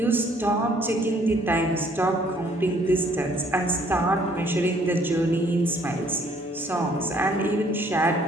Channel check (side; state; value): both; normal; correlation 0.62